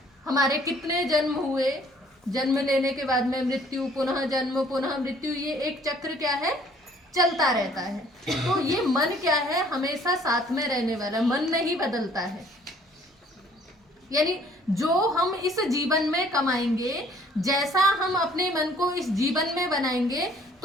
हमारे कितने जन्म हुए, जन्म लेने के बाद में मृत्यु, पुनः जन्म, पुनः मृत्यु, ये एक चक्र क्या है? चलता रहता है। तो ये मन क्या है? हमेशा साथ में रहने वाला, मन नहीं बदलता है। यानी जो हम इस जीवन में कमाएंगे, जैसा हम अपने मन को इस जीवन में बनाएंगे,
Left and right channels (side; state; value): both; normal; correlation 0.58